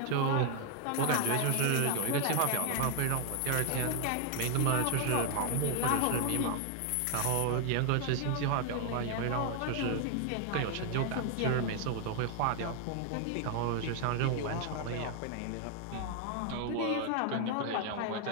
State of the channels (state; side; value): different; both; correlation 0.00